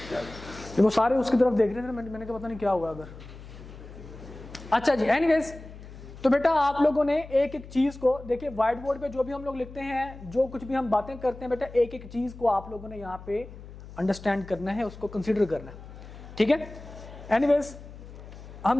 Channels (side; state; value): left; noise; hum, 15 dB below the sound